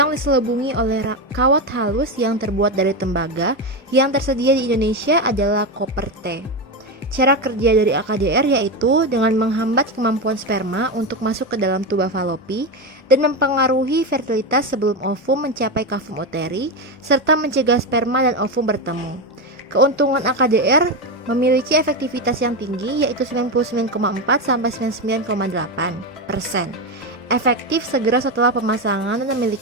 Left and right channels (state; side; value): normal; both; correlation 0.13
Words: diselubungi oleh kawat halus yang terbuat dari tembaga. Yang tersedia di Indonesia adalah koper T. Cara kerja dari AKDR yaitu dengan menghambat kemampuan sperma untuk masuk ke dalam tuba falopi dan mempengaruhi fertilitas sebelum ovum mencapai kavum uteri, serta mencegah sperma dan ovum bertemu. Keuntungan AKDR memiliki efektivitas yang tinggi yaitu 99,4 sampai 99,8%. Efektif segera setelah pemasangan dan